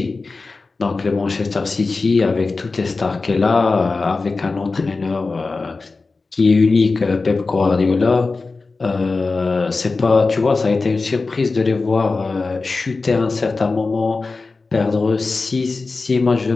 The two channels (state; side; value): quieter; right; 3.9 dB